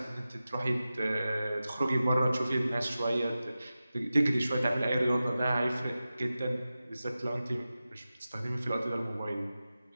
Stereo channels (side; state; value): both; inverted; correlation -0.94